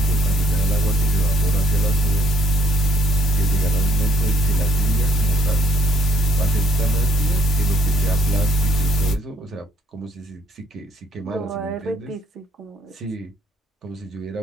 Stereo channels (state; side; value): normal; both; correlation 0.65